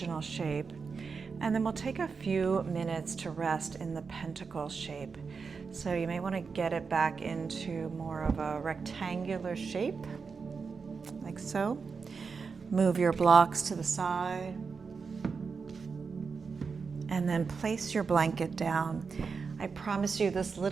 shape. And then we'll take a few minutes to rest in the pentacle shape. So you may want to get it back into more of a rectangular shape. like so. Move your blocks to the side. And then place your blanket down. I promise you this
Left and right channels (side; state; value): left; quieter; 5.2 dB